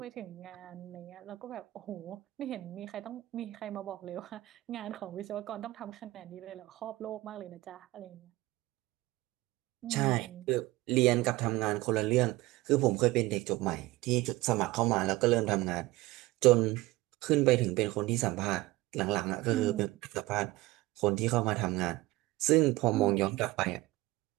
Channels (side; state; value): left; quieter; 19.3 dB